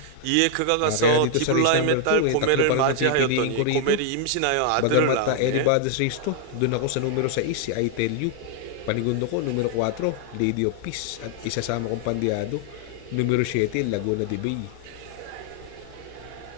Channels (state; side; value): different; both; correlation 0.00